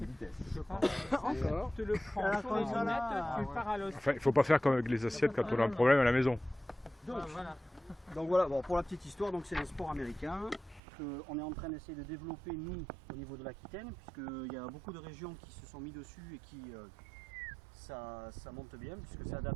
vitesse. Je pense. Encore. Tu le prends sur les lunettes, tu pars à l'os. Enfin, il ne faut pas faire comme avec les assiettes quand on a un problème à la maison. Donc voilà, bon, pour la petite histoire, donc c'est un sport américain qu'on est en train d'essayer de développer nous au niveau de l'Aquitaine, puisqu'il y a beaucoup de régions qui se sont mis dessus et qui ça monte bien, puisque c'est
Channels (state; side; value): drops out; left; at 10.8 s